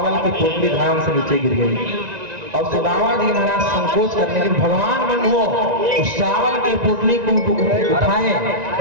की पोटली धाम से नीचे गिर गई। और सुदामा जी महाराज संकोच करने के भगवान बंधुओं उस चावल की पोटली को उठाए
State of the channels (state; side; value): late; left; 1.9 ms